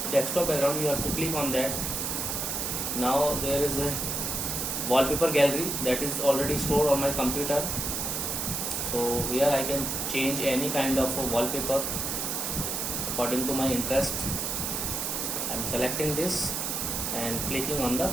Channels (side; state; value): right; noise; hiss, 1 dB below the sound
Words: desktop background, you have to click on that. Now there is a wallpaper gallery that is already stored on my computer. So here I can change any kind of a wallpaper according to my interest. I am selecting this and clicking on the